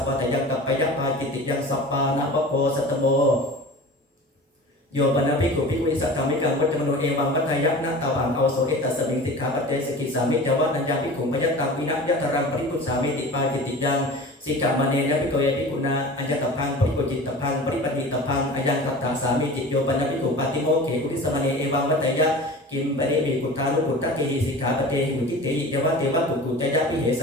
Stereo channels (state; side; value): normal; both; correlation 0.37